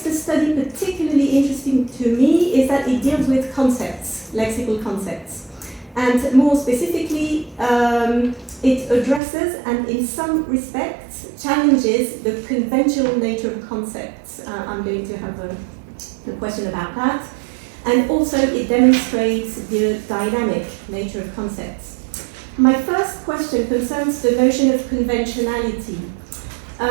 study particularly interesting to me is that it deals with concepts, lexical concepts. And more specifically, it addresses and in some respects challenges the conventional nature of concepts. I'm going to have a question about that. And also it demonstrates the dynamic nature of concepts. My first question concerns the notion of conventionality.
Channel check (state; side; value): drops out; left; at 9.2 s